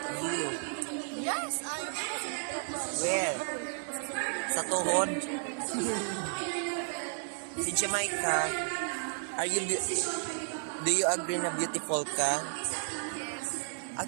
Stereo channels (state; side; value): silent; left; digital silence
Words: You. Yes, I am. Where? Sa tuhod? Si Jamaica, do you agree na beautiful ka? Yes.